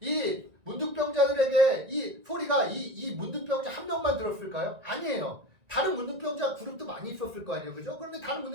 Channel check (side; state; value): left; late; 1.9 ms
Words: 이 문둥병자들에게 이 소리가 이 문둥병자 한 명만 들었을까요? 아니에요. 다른 문둥병자 그룹도 많이 있었을 거 아니에요. 그죠? 그런데 다른